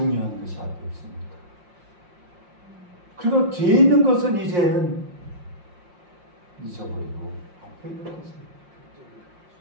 것이 앞에 있습니다. 그리고 뒤에 있는 것은 이제는 잊어버리고 앞에 있는 것을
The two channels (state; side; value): late; left; 5.6 ms